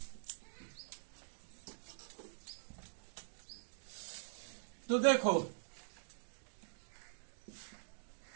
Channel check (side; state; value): left; silent; digital silence